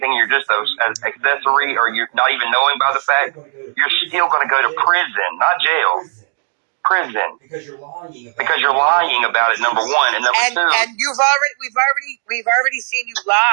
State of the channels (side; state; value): left; silent; digital silence